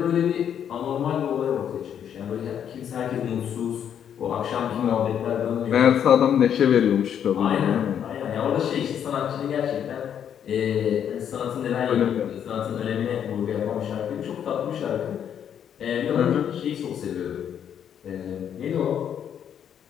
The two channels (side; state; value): right; quieter; 8.9 dB